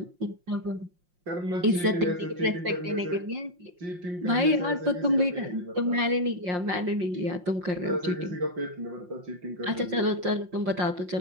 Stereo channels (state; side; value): late; left; 5.6 ms